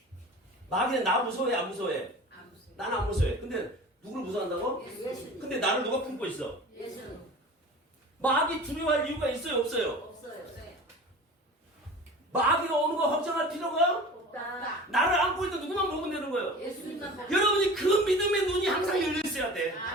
마귀는 나 무서워해 안 무서워해? 나는 안 무서워해. 근데 누구를 무서워한다고? 예수님. 근데 나를 누가 품고 있어? 예수님. 마귀 두려워할 이유가 있어요 없어요? 없어요. 마귀가 오는 거 걱정할 필요가 없다. 나를 안고 있는 누구만 보면 되는 거예요. 예수님만 보고. 여러분이 그 믿음의 눈이 항상 열려 있어야 돼.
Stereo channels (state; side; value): normal; both; correlation 0.38